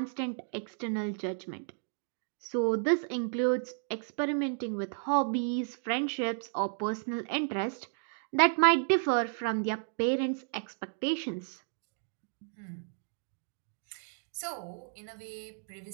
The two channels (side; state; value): left; silent; digital silence